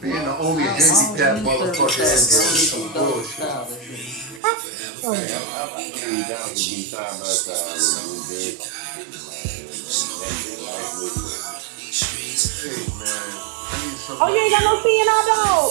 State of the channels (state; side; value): drops out; left; at 4.4 s